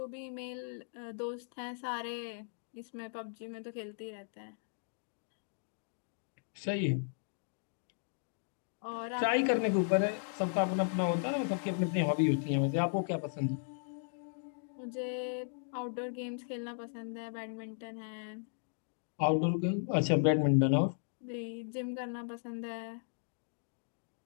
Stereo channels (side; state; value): right; silent; digital silence